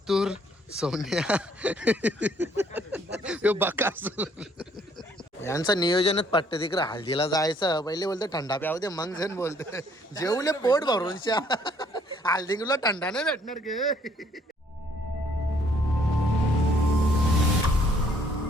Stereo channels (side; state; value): both; normal; correlation 0.64